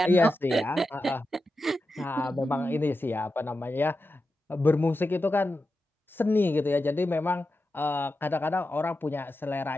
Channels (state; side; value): normal; both; correlation 0.90